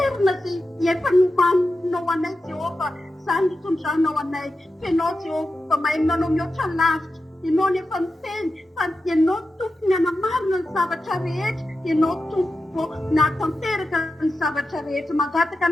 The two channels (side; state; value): both; normal; correlation 0.90